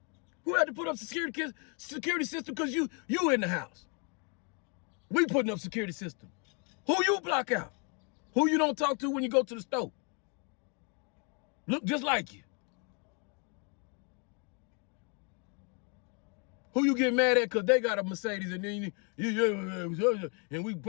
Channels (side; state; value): right; quieter; 36.1 dB